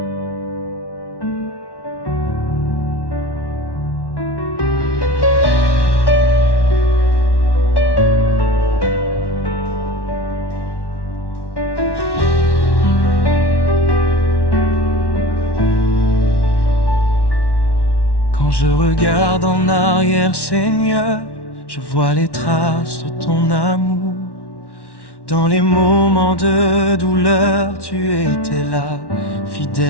Quand je regarde en arrière, Seigneur, je vois les traces de ton amour. Dans les moments de douleur, tu étais là,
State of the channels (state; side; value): late; right; 1.1 ms